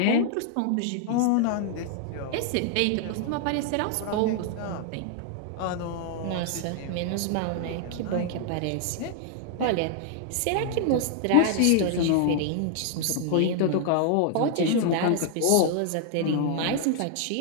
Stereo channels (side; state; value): both; different; correlation 0.00